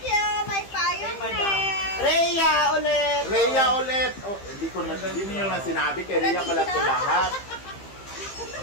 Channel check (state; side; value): late; right; 15 ms